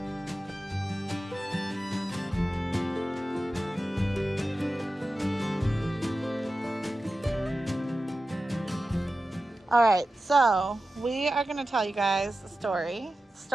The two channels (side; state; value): both; normal; correlation 0.93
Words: All right, so we are gonna tell you guys a story.